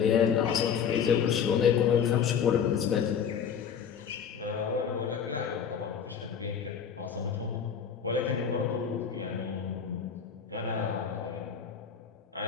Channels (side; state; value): right; quieter; 7.4 dB